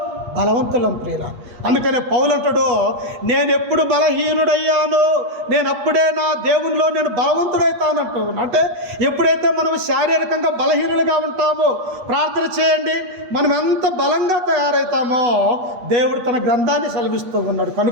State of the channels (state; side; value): late; left; 8.4 ms